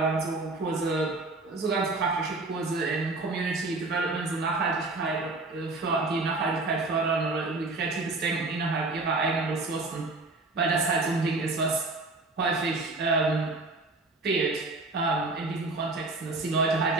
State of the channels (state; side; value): quieter; left; 3.3 dB